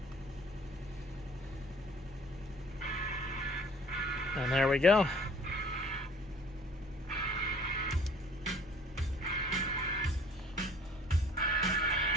And there we go.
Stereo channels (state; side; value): normal; both; correlation 0.52